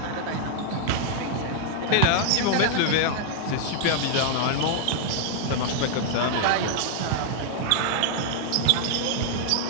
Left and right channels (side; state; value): both; different; correlation -0.01